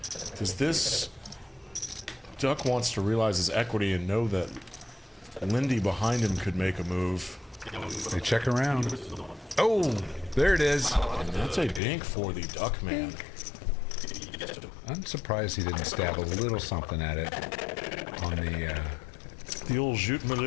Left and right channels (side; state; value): right; drops out; at 11.8 s